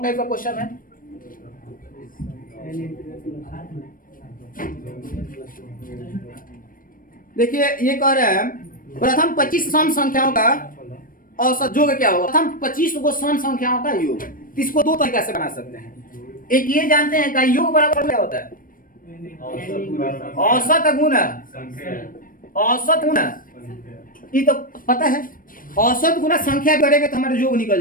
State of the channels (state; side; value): late; right; 0.40 ms